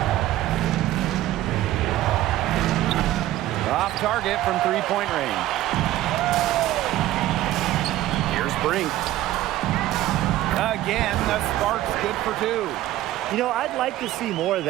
Off target from three-point range. Here's Brink. Again, the spark's good for two. You know, I'd like to see more of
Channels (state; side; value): quieter; left; 14.7 dB